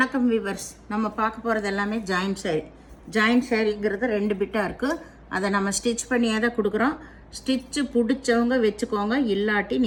வீவர்ஸ். நம்ம பார்க்க போகிறது எல்லாமே ஜாயின்ட் சாரீ. ஜாயின்ட் சாரீங்கிறது 2 பிட்டாக இருக்குது. அதை நம்ம ஸ்டிச் பண்ணியே தான் கொடுக்குறோம். ஸ்டிச்சு பிடிச்சவங்க வச்சுக்கோங்க, இல்லாட்டி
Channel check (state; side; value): identical; both; correlation 1.00